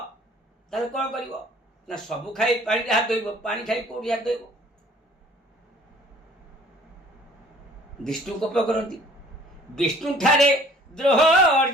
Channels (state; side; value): normal; both; correlation 0.54